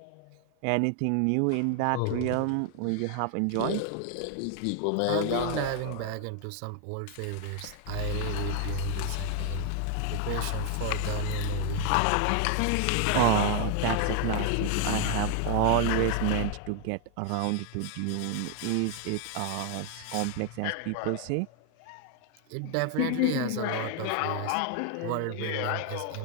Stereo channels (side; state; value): both; different; correlation 0.00